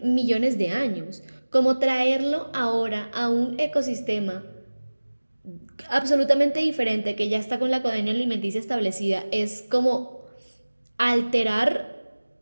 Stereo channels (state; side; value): inverted; both; correlation -1.00